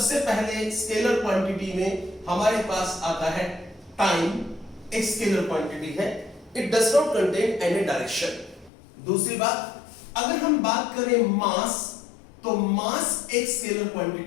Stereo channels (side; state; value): right; drops out; at 8.7 s